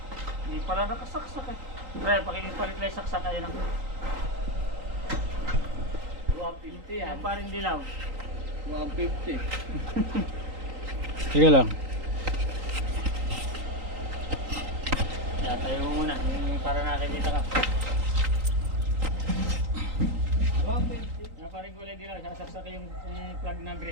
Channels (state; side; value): late; left; 3.8 ms